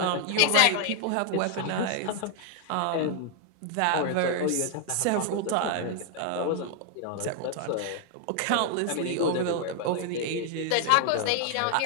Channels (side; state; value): both; different; correlation 0.00